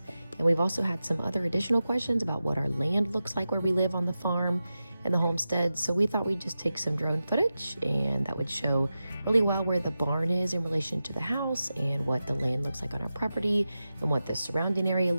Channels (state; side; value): inverted; both; correlation -0.92